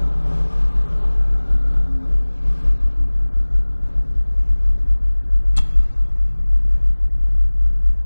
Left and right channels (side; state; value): both; inverted; correlation -1.00